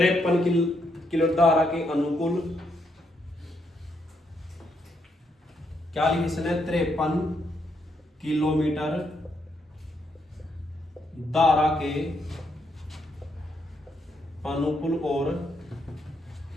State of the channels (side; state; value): both; normal; correlation 0.77